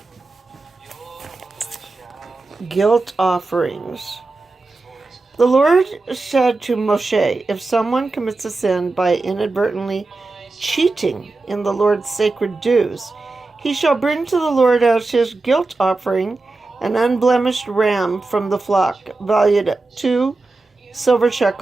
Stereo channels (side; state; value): left; quieter; 3.4 dB